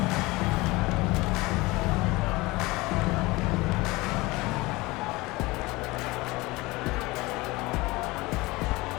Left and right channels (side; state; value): right; quieter; 22.0 dB